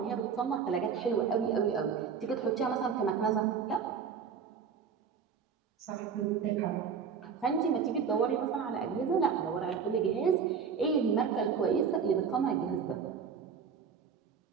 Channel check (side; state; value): left; quieter; 6.6 dB